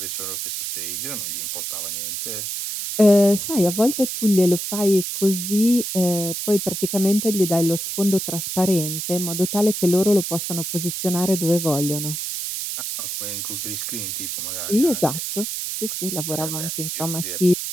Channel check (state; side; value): noise; right; hiss, 4 dB below the sound